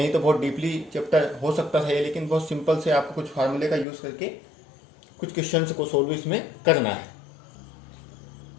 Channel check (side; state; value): right; drops out; at 3.9 s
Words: तो बहुत डीपली चैप्टर हो सकता था ये, लेकिन बहुत सिंपल से आपको कुछ फार्मूले का यूज़ करके कुछ क्वेश्चंस को सोल्व इसमें करना है।